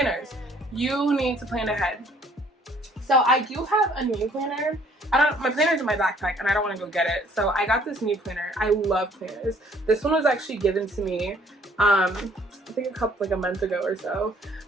You need to plan ahead. So I do have a new planner. My planner's in my backpack and I don't want to go get it. So I got this new planner. I love planners. This one was actually given to me, I think a month ago or so,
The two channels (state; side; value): normal; both; correlation 0.60